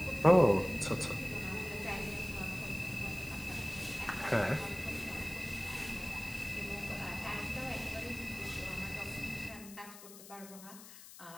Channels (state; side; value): noise; left; hiss, 16 dB below the sound